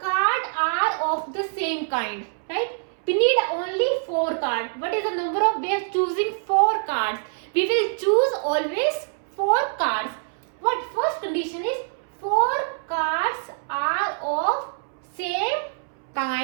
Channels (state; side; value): silent; left; 62 dB below the other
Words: cards are of the same kind, right? We need only 4 cards. What is the number of ways choosing 4 cards? We will choose always 4 cards. What first condition is 4 cards are of same